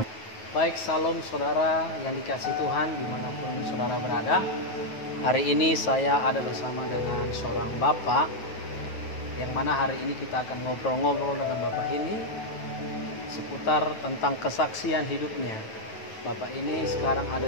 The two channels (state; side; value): late; right; 9.2 ms